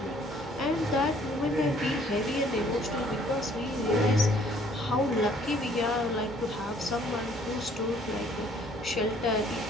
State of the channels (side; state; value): both; normal; correlation 0.60